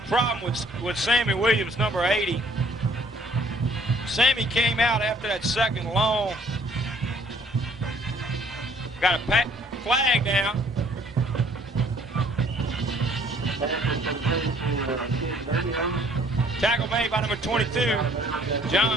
problem with Sammy Williams, number 80. Sammy came out after that second long. Got a flag now. Tackle made by number 22,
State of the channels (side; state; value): both; normal; correlation 0.60